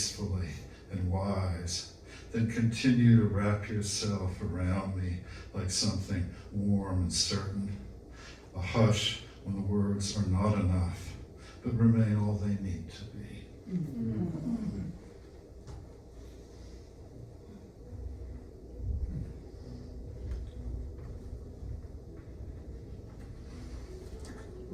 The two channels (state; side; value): identical; both; correlation 1.00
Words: and wise, then continue to wrap yourself around me like something warm and certain, a hush when the words are not enough, but remain all they need to be.